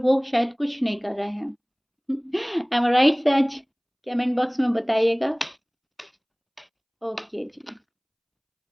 शायद कुछ नहीं कर रहे हैं। एम आई राइट सैच? कमेंट बॉक्स में बताइएगा। ओके जी।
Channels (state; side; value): identical; both; correlation 1.00